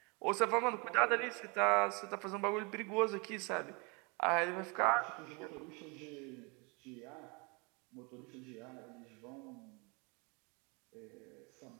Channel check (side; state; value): left; quieter; 30.8 dB